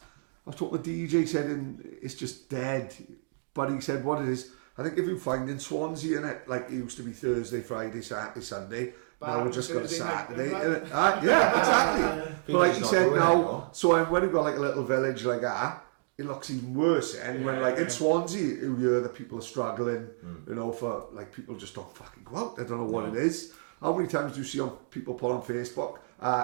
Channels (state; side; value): silent; left; digital silence